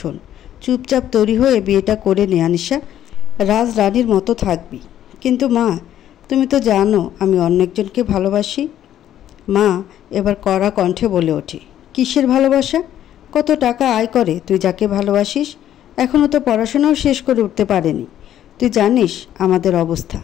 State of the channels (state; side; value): quieter; right; 11.4 dB